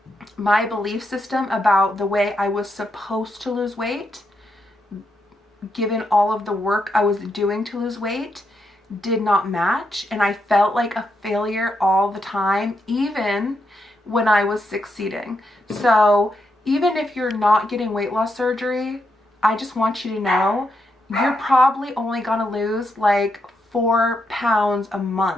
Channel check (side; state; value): both; normal; correlation 0.81